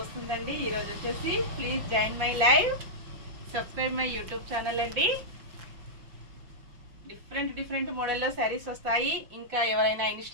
వస్తుందండి ఈ రోజు వచ్చేసి. Please join my live, subscribe my YouTube channel అండి. డిఫరెంట్ మోడల్లో శారీస్ వస్తాయి. ఇంకా ఎవరైనా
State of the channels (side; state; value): left; late; 5.5 ms